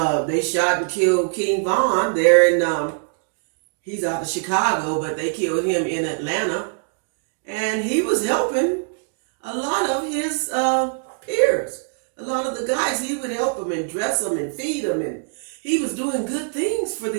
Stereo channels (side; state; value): left; silent; digital silence